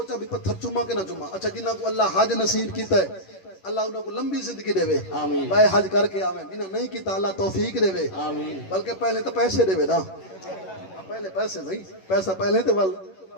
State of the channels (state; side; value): late; right; 11 ms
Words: بھی پتھر چوما کہ نہ چوما اچھا جنہ کو اللہ حج نصیب کیتا ہے اللہ انہاں کو لمبی زندگی دے وے آمین بھائی حج کر کے آویں جنہ نہیں کیتا اللہ توفیق دے وے آمین بلکہ پہلے تو پیسے دے وے نا پہلے پیسے نہیں پیسہ پہلے تے ول